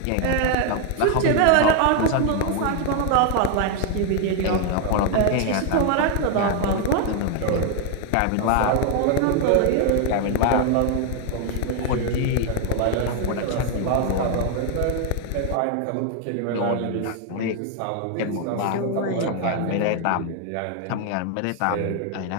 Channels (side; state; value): both; different; correlation 0.01